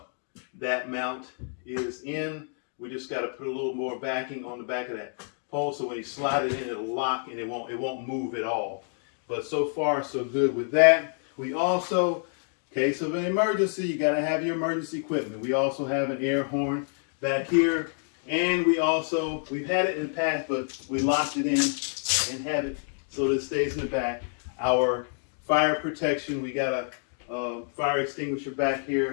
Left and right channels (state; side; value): silent; right; 59 dB below the other